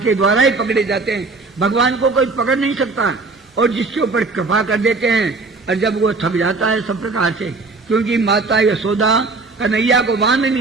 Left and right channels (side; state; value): left; quieter; 3.8 dB